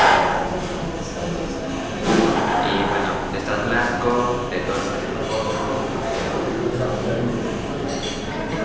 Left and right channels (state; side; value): identical; both; correlation 1.00